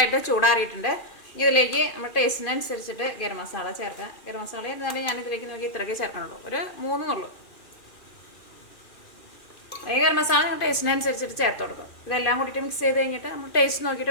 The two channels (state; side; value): late; right; 2.5 ms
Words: ചൂടാറിയിട്ടുണ്ട്. ഇതിലേക്ക് നമ്മൾ ടേസ്റ്റിനനുസരിച്ചിട്ട് ഗരം മസാല ചേർക്കാം. ഗരം മസാല എന്നാലും ഞാൻ ഇതിലേക്ക് നോക്കി ഇത്രയൊക്കെ ചേർക്കണുള്ളൂ. ഒരു 3 ഉള്ളൂ. ഈ ഗരം മസാല നിങ്ങൾ ടേസ്റ്റിനനുസരിച്ചിട്ട് ചേർത്ത് കൊടുക്കും. ഇതെല്ലാം കൂടിയിട്ട് മിക്സ് ചെയ്ത് കഴിഞ്ഞിട്ട് നമ്മൾ ടേസ്റ്റ് നോക്കിയിട്ട്